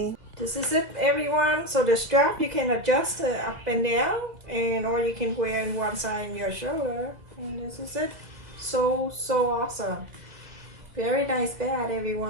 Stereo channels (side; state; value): left; late; 2.0 ms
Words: This is it, everyone. So the strap you can adjust up and down, and or you can wear in one side in your shoulder. And this is it. So awesome. Very nice bag,